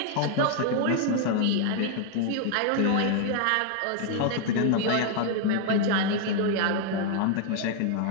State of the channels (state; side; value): different; both; correlation 0.00